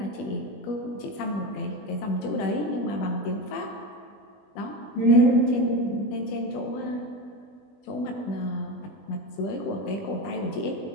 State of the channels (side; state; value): right; late; 20 ms